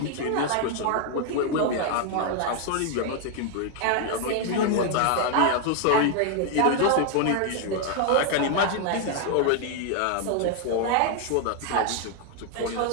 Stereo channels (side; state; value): both; different; correlation 0.00